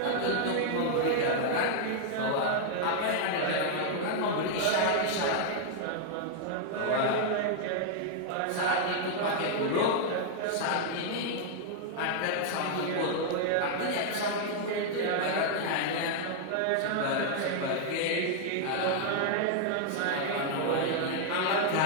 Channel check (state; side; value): different; both; correlation 0.00